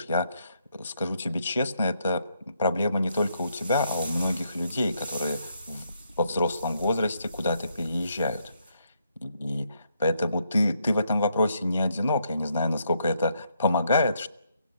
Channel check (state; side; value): inverted; both; correlation -0.76